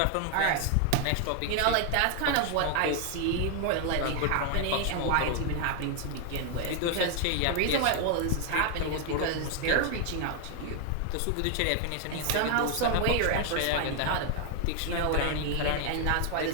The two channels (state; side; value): different; both; correlation 0.01